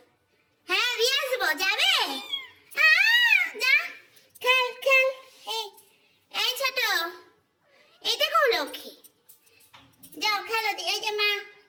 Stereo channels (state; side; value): identical; both; correlation 1.00